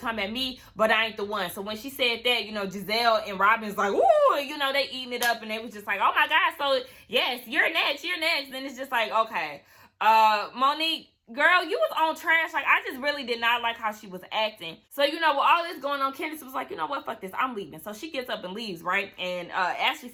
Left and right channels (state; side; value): identical; both; correlation 1.00